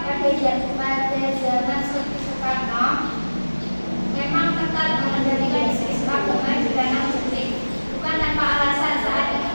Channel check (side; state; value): both; inverted; correlation -1.00